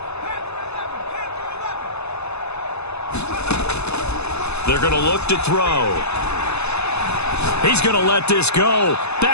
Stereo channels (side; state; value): right; late; 0.80 ms